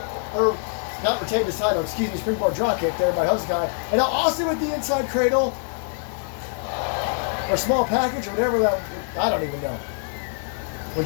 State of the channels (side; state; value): right; silent; digital silence